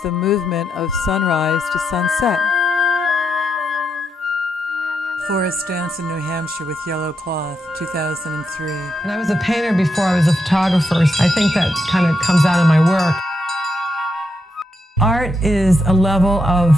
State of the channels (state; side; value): normal; both; correlation 0.82